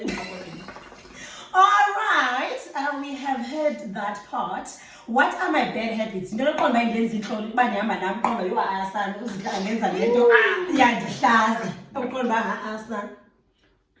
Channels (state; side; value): identical; both; correlation 1.00